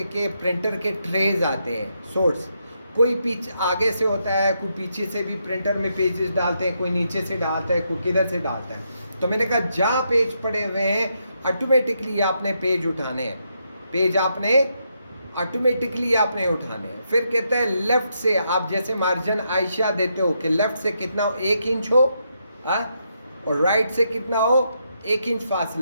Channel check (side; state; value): both; inverted; correlation -0.80